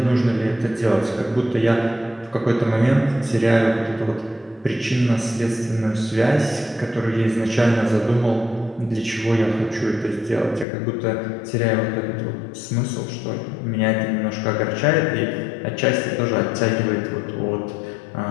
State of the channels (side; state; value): right; drops out; at 10.7 s